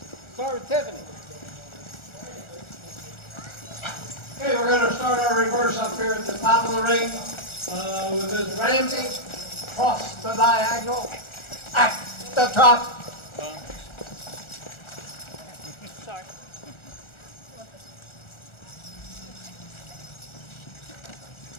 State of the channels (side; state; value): right; late; 1.4 ms